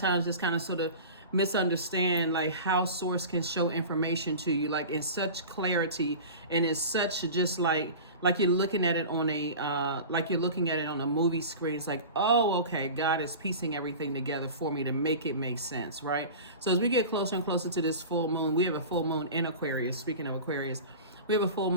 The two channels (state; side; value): inverted; both; correlation -0.34